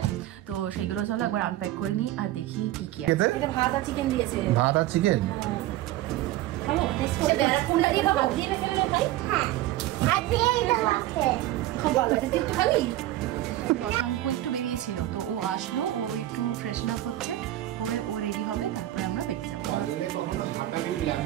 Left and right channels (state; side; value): quieter; left; 14.9 dB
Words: তো সেগুলো চলো একবার আনপ্যাক করে নিই আর দেখি কি কি আছে। এটা ভাত আর চিকেন দিয়েছে। ভাত আর চিকেন? শশাঙ্ক একটু বেরিয়েছিল, তো ও আসলো, ও একটু ফ্রেশন আপ হচ্ছে, হয়ে ও রেডি হবে, তারপরে আমরা বেরিয়ে যাবো।